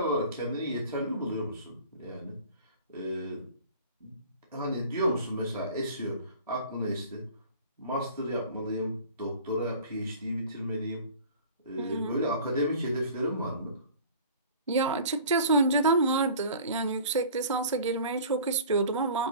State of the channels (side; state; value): both; inverted; correlation -0.44